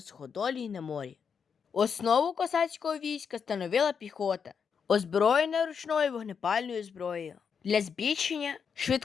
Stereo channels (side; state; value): right; quieter; 6.5 dB